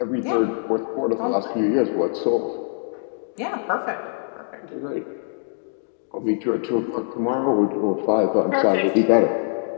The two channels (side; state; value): right; silent; digital silence